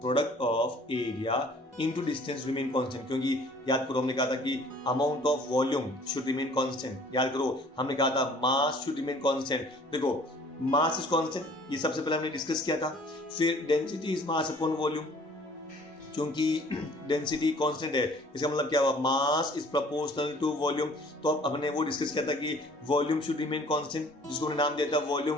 product of area into distance remain constant, क्योंकि याद करो हमने कहा था कि amount of volume should remain constant. याद करो हमने कहा था मास शुड रिमेन कांस्टेंट। देखो मास इज कांस्टेंट, ये सबसे पहले हमने डिस्कस किया था। फिर density is mass upon volume, क्योंकि डेंसिटी कांस्टेंट है, इसका मतलब क्या हुआ, mass is proportional to volume. तो अब हमने वो डिस्कस किया था कि वॉल्यूम शुड रिमेन कांस्टेंट, जिसको हमने नाम दिया था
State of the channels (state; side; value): normal; both; correlation 0.53